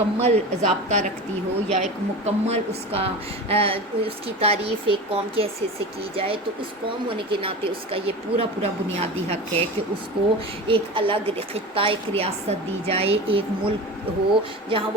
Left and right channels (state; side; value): normal; both; correlation 0.30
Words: ضابطہ رکھتی ہو یا ایک مکمل اس کی تعریف ایک قوم کی حیثیت سے کی جائے، تو اس قوم ہونے کے ناطے اس کا یہ پورا بنیادی حق ہے کہ اس کو ایک الگ خطہ، ایک ریاست دی جائے، ایک ملک ہو جہاں